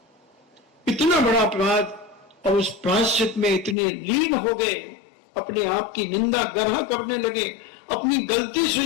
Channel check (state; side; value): drops out; right; at 3.8 s